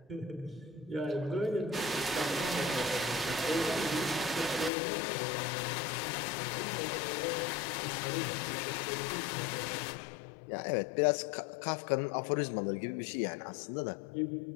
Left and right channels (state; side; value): drops out; right; at 4.7 s